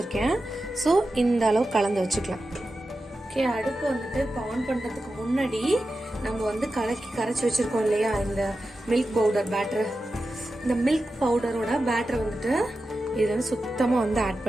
ஸோ இந்த அளவு கலந்து வச்சுக்கலாம். ஓகே, அடுப்பு வந்துட்டு இப்போ ஆன் பண்ணுறதுக்கு முன்னாடி நம்ம வந்து கரைச்சி வச்சுருக்கோம் இல்லையா இந்த மில்க் பவுடர் பேட்டர், இந்த மில்க் பவுடரோட பேட்டரை வந்துட்டு இதில் வந்து சுத்தமாக வந்து ஆட்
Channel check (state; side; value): normal; both; correlation 0.92